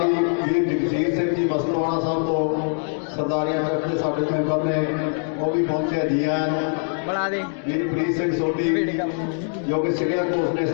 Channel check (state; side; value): silent; right; digital silence